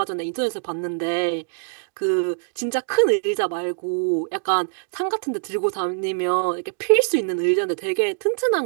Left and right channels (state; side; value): silent; left; digital silence